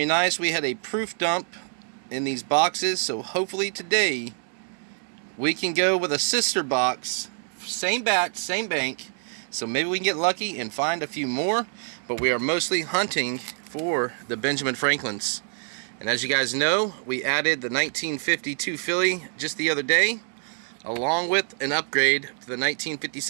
nice. We had a proof dump in these boxes, so hopefully today we can go with a sister box, same batch, same bank, so maybe we can get lucky and find a few more. But we are mostly hunting for the Benjamin Franklins, and as you guys know, we added the 1952 filly just the other day, along with an upgrade to the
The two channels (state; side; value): silent; left; 57 dB below the other